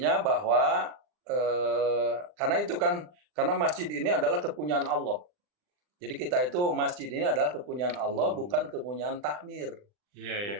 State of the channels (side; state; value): left; late; 39 ms